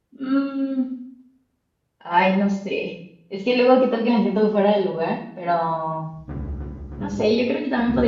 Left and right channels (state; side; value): identical; both; correlation 1.00